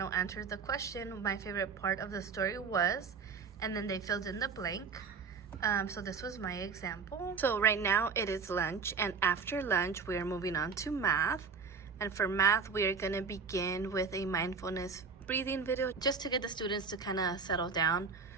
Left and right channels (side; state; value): left; quieter; 5.3 dB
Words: answered the question, my favorite part of the story was, and then they filled in the blank. So this was my example. So right now it is lunch, and after lunch we are moving on to math. And for math, we are gonna begin with a mindfulness breathing video just to get the students to kind of settle down